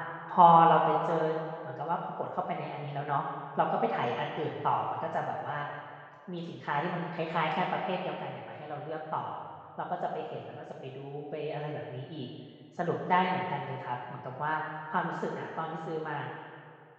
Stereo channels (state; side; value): identical; both; correlation 1.00